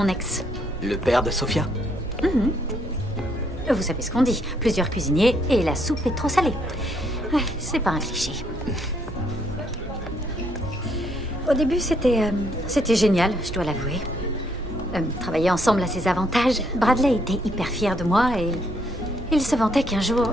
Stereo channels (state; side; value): normal; both; correlation 0.71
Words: ex. Le père de Sophia? Mhm. Vous savez ce qu'on dit, plusieurs cuisiniers et la soupe est trop salée. Ouais, c'est pas un cliché. Au début, c'était génial, je dois l'avouer. Travailler ensemble a ses avantages. Bradley était hyper fier de moi et il se vantait qu'un jour,